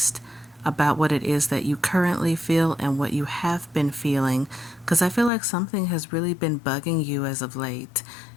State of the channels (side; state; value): right; drops out; at 5.3 s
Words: about what it is that you currently feel and what you have been feeling, because I feel like something has really been bugging you as of late.